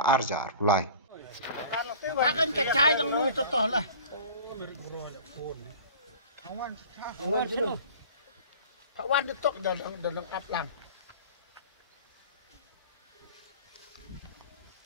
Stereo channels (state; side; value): inverted; both; correlation -0.41